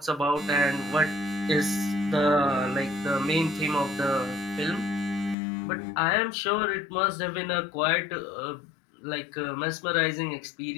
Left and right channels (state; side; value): drops out; right; at 5.4 s